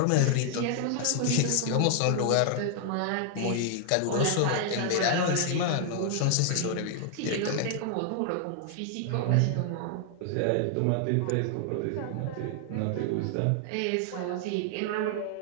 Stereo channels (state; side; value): different; both; correlation 0.00